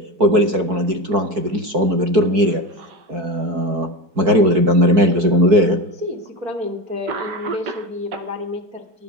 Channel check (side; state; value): left; late; 4.6 ms